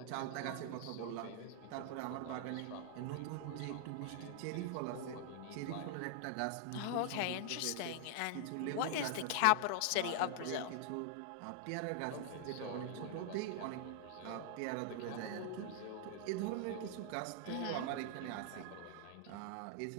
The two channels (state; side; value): different; both; correlation 0.00